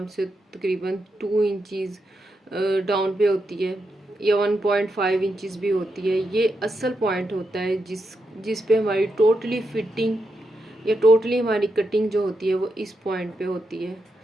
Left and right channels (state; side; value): normal; both; correlation 0.84